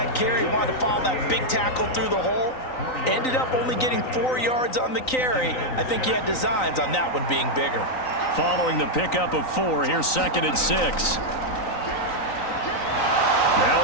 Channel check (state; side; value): late; right; 3.9 ms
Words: carry. He wanted to follow that big tackle through the hole. Ended up only getting 4 yards on the carry. I think he had designs on that one being bigger. Following the pickup of 4, here's 2nd and 6.